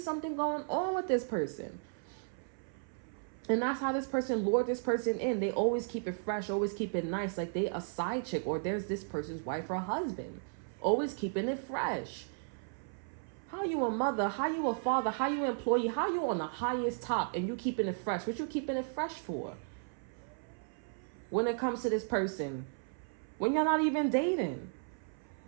something going on with this person. And that's how this person lured this person in. They always keep it fresh, always keep it nice, like they a side chick, or there's this person's wife or husband. Always keeping it fresh. How you a mother, how you a father, how you an employee, how you on the highest top and you keeping it fresh? What you keeping it fresh for? When it comes to this person, when you're not even dating.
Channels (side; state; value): left; silent; 55 dB below the other